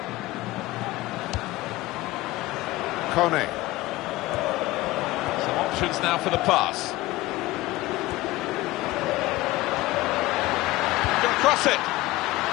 Kone. Some options now for the pass. Gonna cross it.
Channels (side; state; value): right; quieter; 18.7 dB